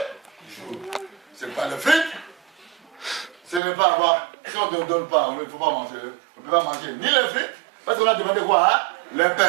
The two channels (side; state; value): left; drops out; at 3.6 s